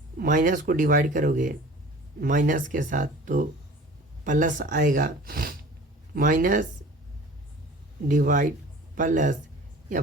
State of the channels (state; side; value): normal; both; correlation 0.43